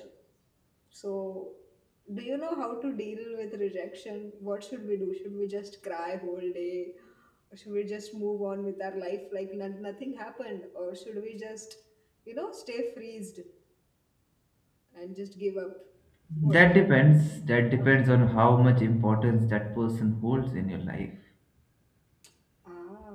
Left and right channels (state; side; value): identical; both; correlation 1.00